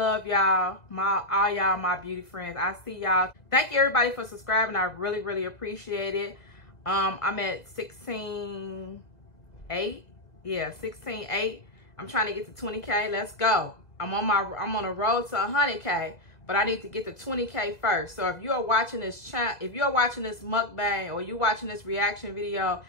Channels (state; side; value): late; right; 2.0 ms